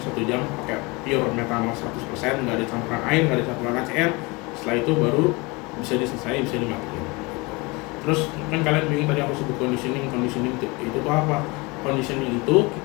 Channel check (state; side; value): quieter; right; 26.1 dB